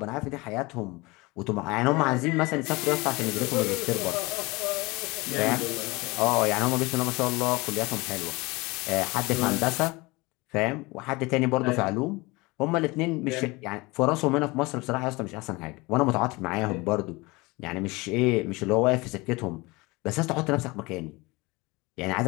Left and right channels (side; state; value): right; quieter; 23.9 dB